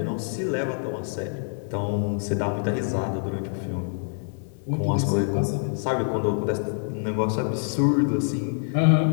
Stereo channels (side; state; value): right; silent; 61 dB below the other